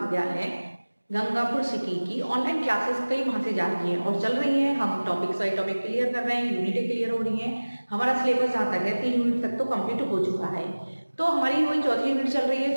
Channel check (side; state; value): both; inverted; correlation -1.00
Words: गंगापुर सिटी की ऑनलाइन क्लासेस कई माह से जा रही हैं और चल रही हैं। हम टॉपिक बाई टॉपिक क्लियर कर रहे हैं, यूनिटें क्लियर हो रही हैं। हमारा सिलेबस जहाँ तक है 3 यूनिट तक तो कंप्लीट हो चुका है। तो हमारी वही चौथी यूनिट चल रही है।